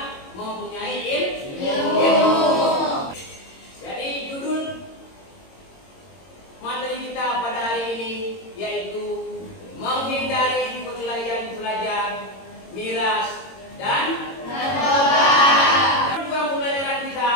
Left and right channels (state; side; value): late; right; 22 ms